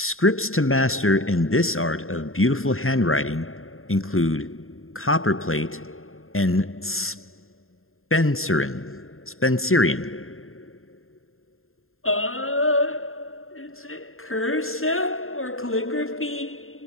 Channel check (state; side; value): late; right; 0.61 ms